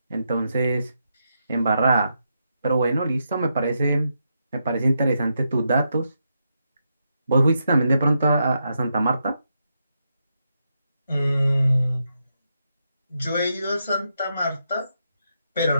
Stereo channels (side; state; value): both; inverted; correlation -0.83